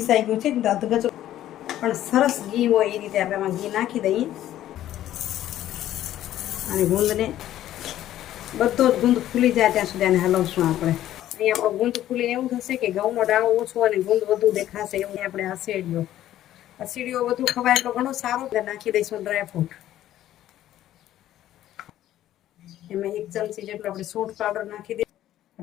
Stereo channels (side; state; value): right; quieter; 12.9 dB